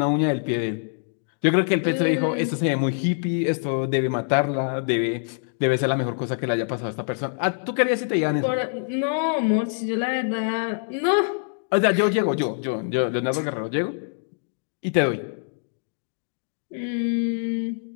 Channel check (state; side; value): silent; right; digital silence